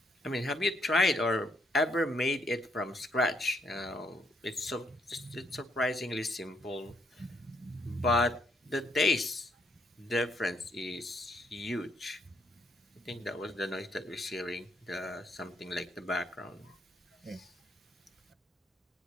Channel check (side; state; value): both; normal; correlation 0.72